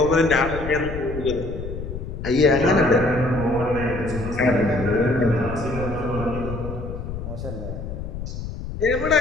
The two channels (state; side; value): noise; left; rumble, 8 dB below the sound